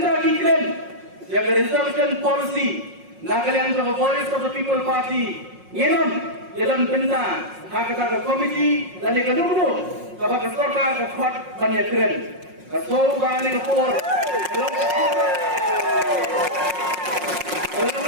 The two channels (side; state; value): left; late; 5.5 ms